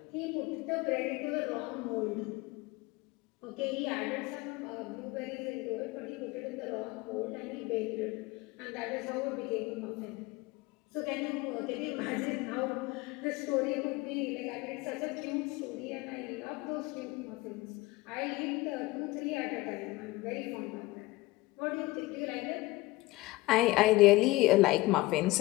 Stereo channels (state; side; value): quieter; right; 20.4 dB